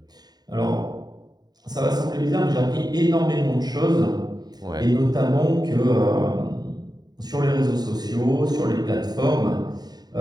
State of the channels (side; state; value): left; late; 0.20 ms